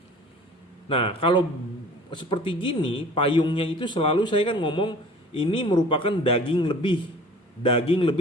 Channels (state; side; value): normal; both; correlation 0.47